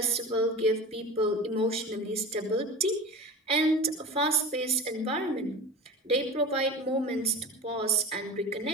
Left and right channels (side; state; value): both; normal; correlation 0.33